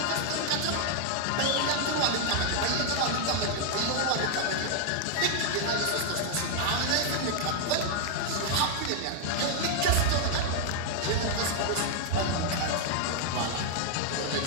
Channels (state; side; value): different; both; correlation 0.00